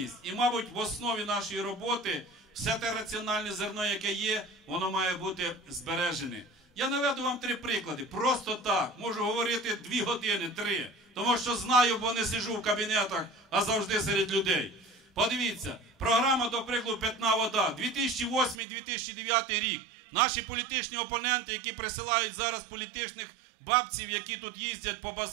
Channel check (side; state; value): left; drops out; at 18.6 s